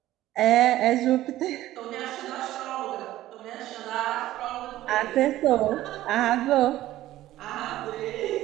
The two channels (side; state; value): left; quieter; 14.8 dB